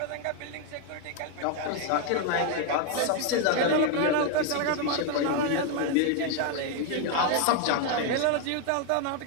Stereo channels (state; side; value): different; both; correlation 0.01